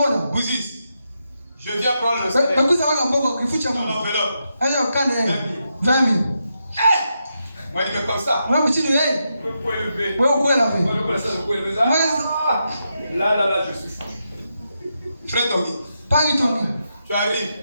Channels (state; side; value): inverted; both; correlation -0.85